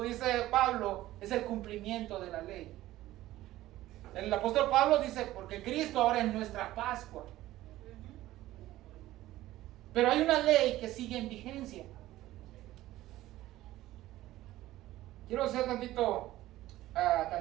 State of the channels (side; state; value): left; quieter; 15.6 dB